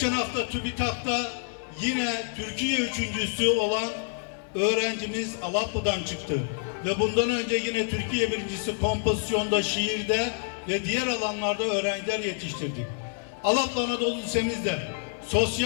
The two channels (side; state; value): right; silent; 60 dB below the other